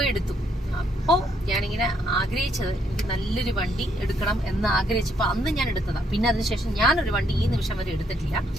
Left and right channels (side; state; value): both; normal; correlation 0.72